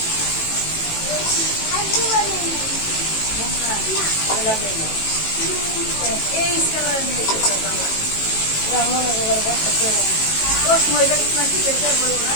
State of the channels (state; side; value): late; right; 18 ms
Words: মনে করার বসা করে